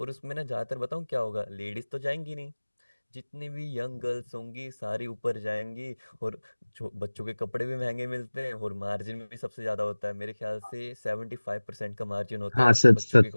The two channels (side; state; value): both; inverted; correlation -1.00